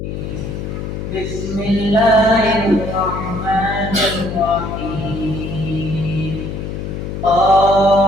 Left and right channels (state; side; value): noise; left; hum, 6 dB below the sound